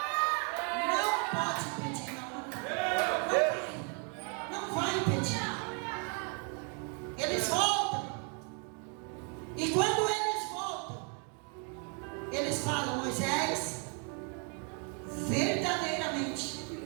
não pode impedir, não vai impedir. Eles voltam, e quando eles voltam, eles falam: Moisés, verdadeiramente,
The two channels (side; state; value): left; quieter; 38.7 dB